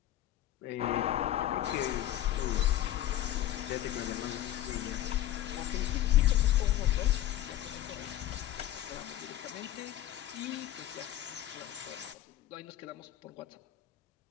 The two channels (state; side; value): quieter; right; 13.1 dB